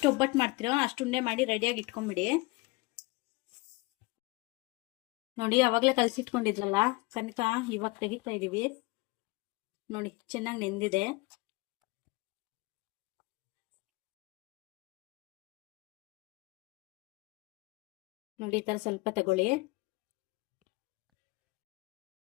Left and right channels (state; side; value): quieter; right; 24.5 dB